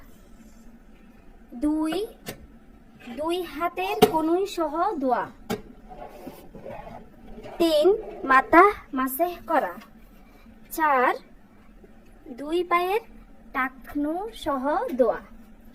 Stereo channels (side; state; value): both; identical; correlation 1.00